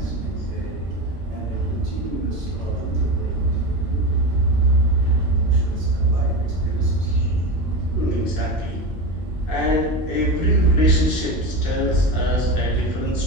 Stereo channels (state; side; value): normal; both; correlation 0.22